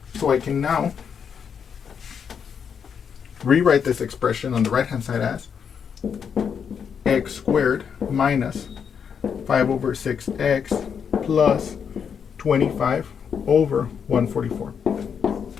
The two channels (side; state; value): right; quieter; 7.1 dB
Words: So I can now rewrite this expression on the right-hand side as x squared minus 5 over 6x plus 25 over 144.